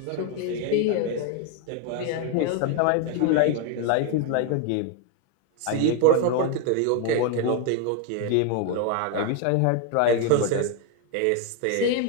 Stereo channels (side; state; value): both; different; correlation 0.01